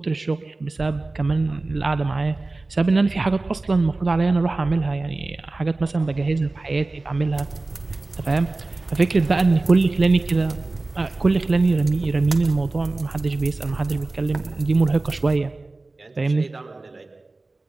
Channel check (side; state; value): left; quieter; 3.3 dB